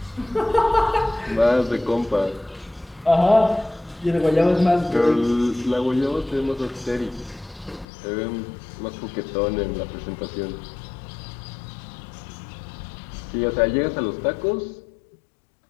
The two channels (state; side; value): drops out; right; at 7.9 s